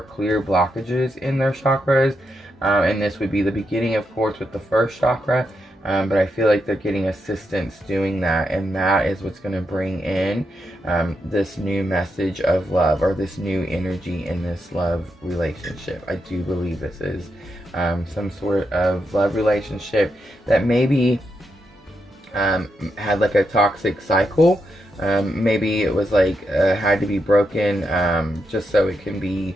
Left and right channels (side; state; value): both; normal; correlation 0.83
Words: clear blockages in their chakras, and this would be the beginning, of course, with the first chakra, but I feel like they're getting assistance doing that, and that is what's going to bring in this new message of love, or this new energy in this love relationship. I do believe this is some sort of love relationship that maybe had like a toxic cycle. Maybe it was like had to be broken, just so it can be